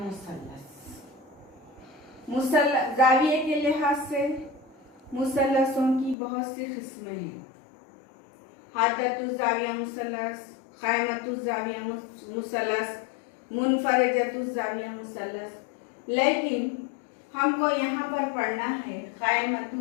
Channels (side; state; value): right; drops out; at 6.2 s